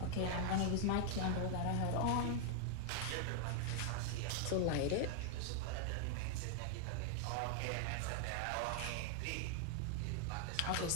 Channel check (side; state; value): both; different; correlation 0.00